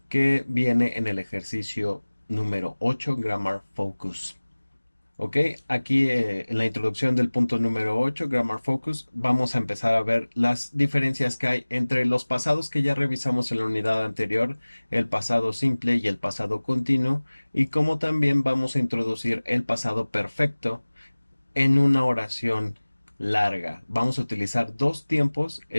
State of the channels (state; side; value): inverted; both; correlation -1.00